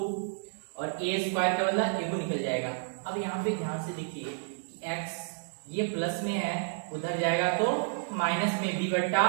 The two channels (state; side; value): silent; left; 57 dB below the other